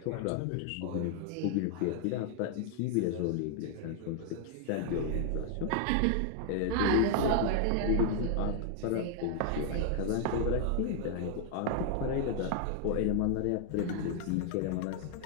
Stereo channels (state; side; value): different; both; correlation 0.00